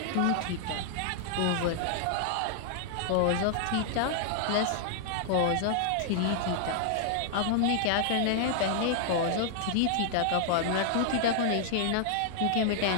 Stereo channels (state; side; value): different; both; correlation -0.01